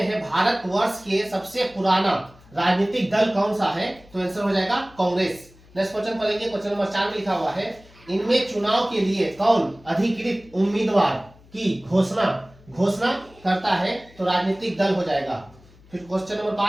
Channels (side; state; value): left; noise; hum, 25 dB below the sound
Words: है, भारतवर्ष के सबसे पुराना राजनीतिक दल कौन सा है? तो आंसर हो जाएगा कांग्रेस। नेक्स्ट क्वेश्चन पढ़ेंगे। क्वेश्चन नंबर 4 में लिखा हुआ है, इनमें चुनाव के लिए कौन अधिकृत उम्मीदवार की घोषणा करता है? तो राजनीतिक दल हो जाएगा। फिर क्वेश्चन नंबर